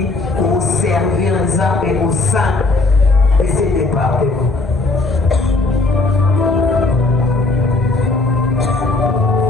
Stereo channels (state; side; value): quieter; right; 3.3 dB